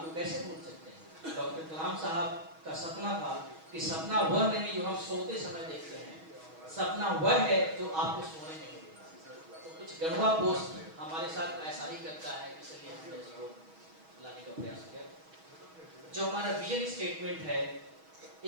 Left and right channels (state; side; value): late; left; 6.2 ms